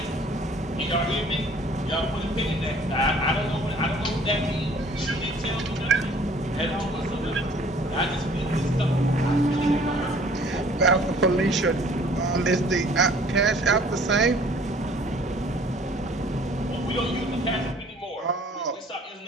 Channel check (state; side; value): normal; both; correlation 0.54